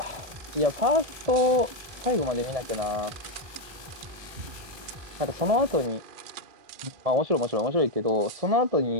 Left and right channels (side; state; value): left; late; 1.3 ms